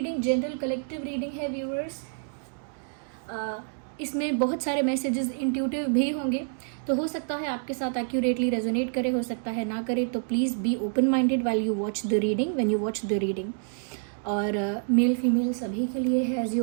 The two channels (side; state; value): left; silent; digital silence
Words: जनरल कलेक्टिव रीडिंग है व्यूअर्स, इसमें बहुत सारे मैसेजेस इंट्यूटिव भी होंगे, तो हो सकता है आपके साथ एक्यूरेटली रेजोनेट करे, हो सकता है ना करे, तो please be open minded while you watch the reading, when you watch the reading. और मेल फीमेल सभी के लिए है, as